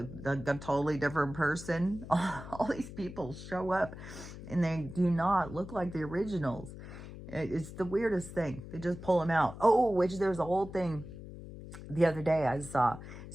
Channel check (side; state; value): left; noise; hum, 13 dB below the sound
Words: a totally different person. All these people show up and they do not look like the originals. It's the weirdest thing. They just pull them out. Oh, which there's a whole thing the other day I saw.